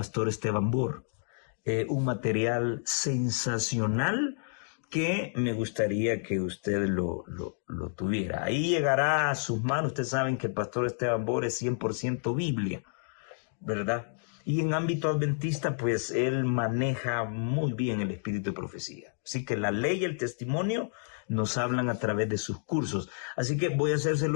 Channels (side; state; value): right; silent; digital silence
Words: Esteban Bor. Un material sensacional que me gustaría que usted lo tuviera. Ahí llegará a sus manos. Ustedes saben que el pastor Esteban Bor es 100% Biblia, ¿verdad? Y en ámbito adventista, pues él maneja muy bien el espíritu de profecía. Así que la ley y el testimonio nos hablan a través de sus cursos. Así que voy a